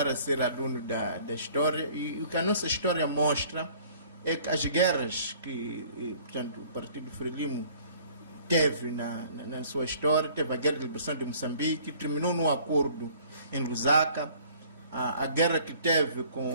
a ser aluno da história, e o que a nossa história mostra é que as guerras que, portanto, o Partido Frelimo teve na sua história, teve a Guerra de Liberação de Moçambique, terminou num acordo em Lusaka, a guerra que teve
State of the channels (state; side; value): inverted; both; correlation -0.55